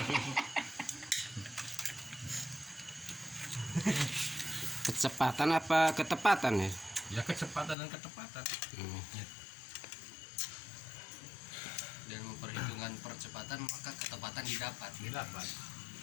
Kecepatan apa ketepatan ya? Ya kecepatan dan ketepatan. Gitu. Dan memperhitungkan percepatan maka ketepatan didapat.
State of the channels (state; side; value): drops out; right; at 7.8 s